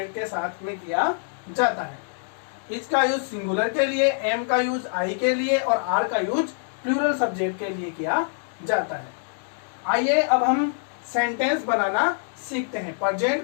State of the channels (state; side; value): silent; right; digital silence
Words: के साथ में किया जाता है। इसका यूज सिंगुलर के लिए, एम का यूज आई के लिए और आर का यूज प्लूरल सब्जेक्ट के लिए किया जाता है। आइए अब हम सेंटेंस बनाना सीखते हैं। प्रेजेंट